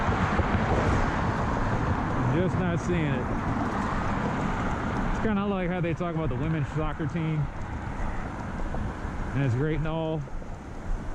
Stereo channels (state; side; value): identical; both; correlation 1.00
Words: just not seeing it. It's kind of like how they talk about the women's soccer team, and it's great and all,